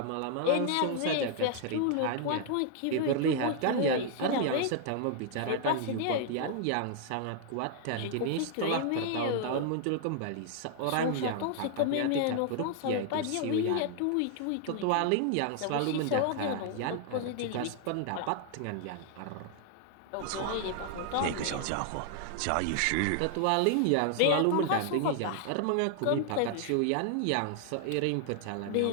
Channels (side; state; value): both; different; correlation 0.00